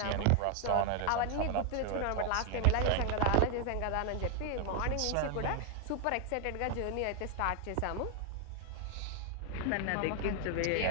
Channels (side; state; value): both; different; correlation 0.00